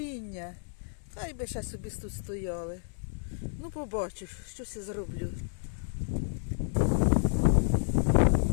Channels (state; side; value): silent; right; digital silence